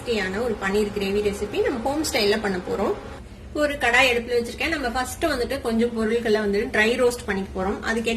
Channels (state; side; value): identical; both; correlation 1.00